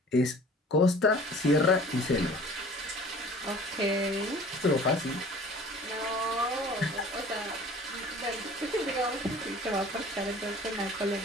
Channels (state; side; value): normal; both; correlation 0.47